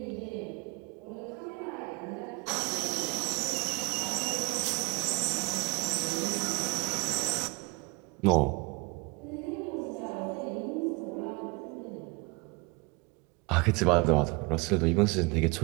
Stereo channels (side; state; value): left; quieter; 27.8 dB